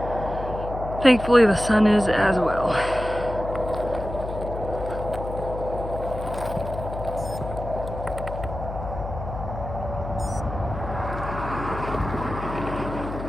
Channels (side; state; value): left; noise; hum, 8 dB below the sound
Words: Thankfully the sun is as well.